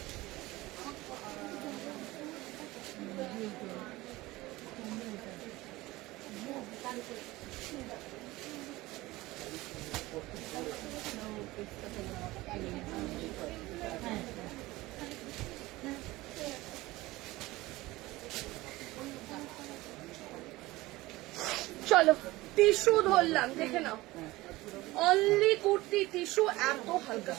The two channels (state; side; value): quieter; left; 19.4 dB